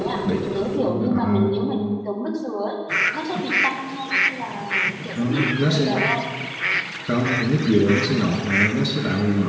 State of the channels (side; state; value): both; identical; correlation 1.00